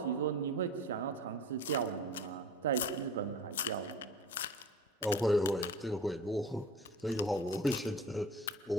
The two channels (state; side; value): normal; both; correlation 0.40